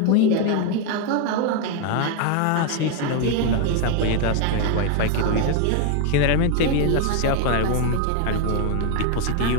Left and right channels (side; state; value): both; different; correlation 0.01